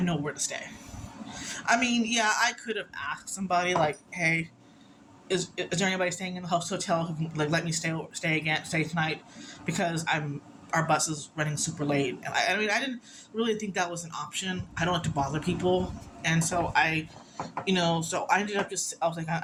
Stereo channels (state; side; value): identical; both; correlation 1.00